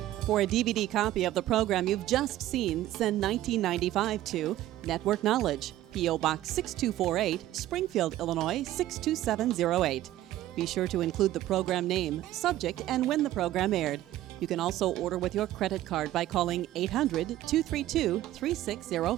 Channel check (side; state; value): left; quieter; 14.3 dB